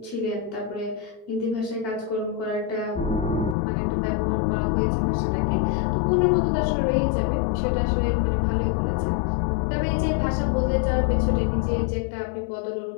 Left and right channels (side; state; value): right; drops out; at 3.6 s